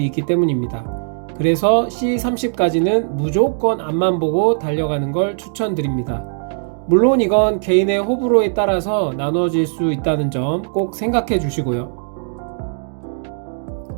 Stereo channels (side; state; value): left; silent; digital silence